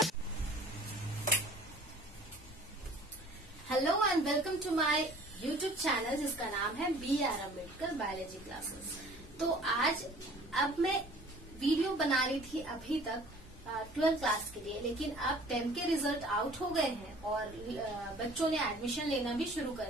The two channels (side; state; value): both; normal; correlation 0.50